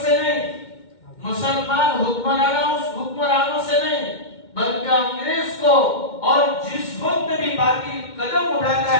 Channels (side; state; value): right; late; 2.1 ms